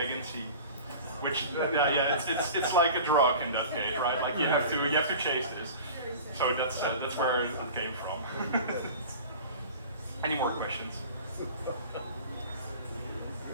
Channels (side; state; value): both; inverted; correlation -0.39